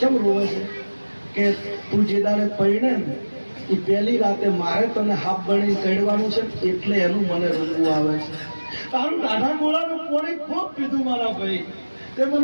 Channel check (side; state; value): both; inverted; correlation -1.00